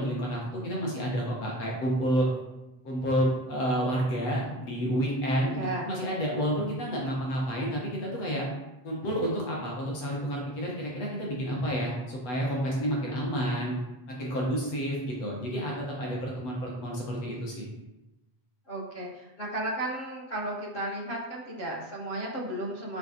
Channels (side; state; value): right; late; 8.0 ms